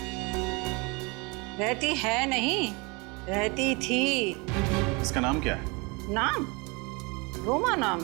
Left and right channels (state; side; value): quieter; left; 28.3 dB